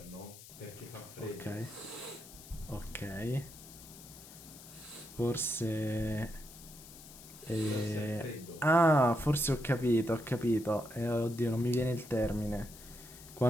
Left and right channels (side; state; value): left; noise; hiss, 17 dB below the sound